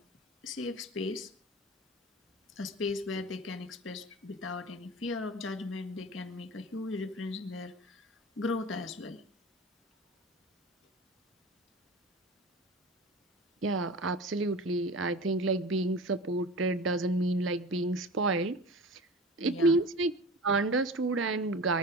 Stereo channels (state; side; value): normal; both; correlation 0.34